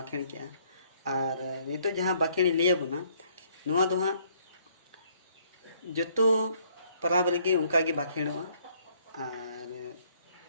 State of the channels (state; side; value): inverted; both; correlation -0.65